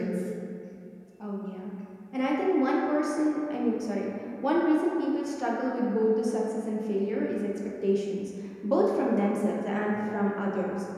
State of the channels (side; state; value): both; identical; correlation 1.00